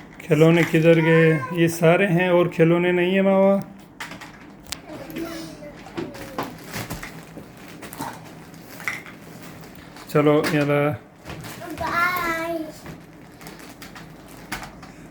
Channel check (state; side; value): identical; both; correlation 1.00